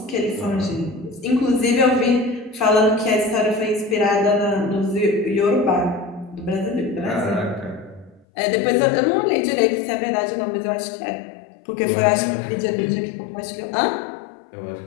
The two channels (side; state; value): right; drops out; at 8.2 s